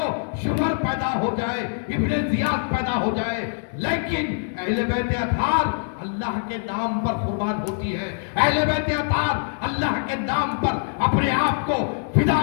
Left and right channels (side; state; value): right; silent; 63 dB below the other